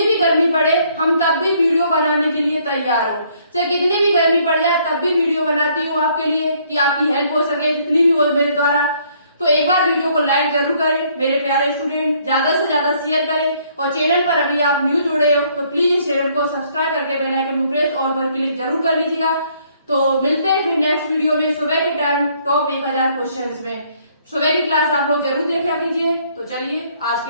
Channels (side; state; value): both; inverted; correlation -0.65